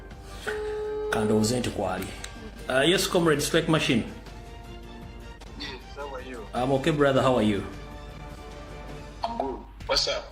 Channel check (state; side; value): identical; both; correlation 1.00